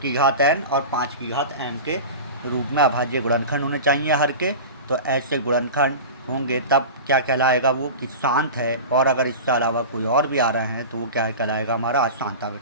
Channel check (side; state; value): both; inverted; correlation -0.31